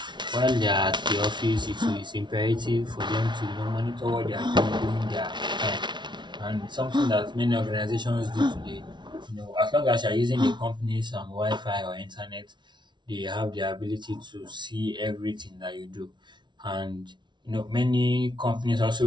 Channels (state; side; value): late; left; 0.22 ms